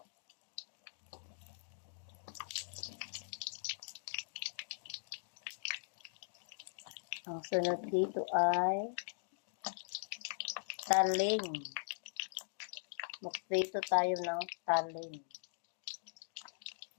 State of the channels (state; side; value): silent; right; digital silence